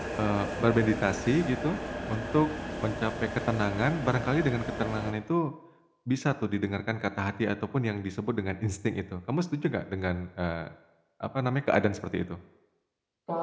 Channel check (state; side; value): identical; both; correlation 1.00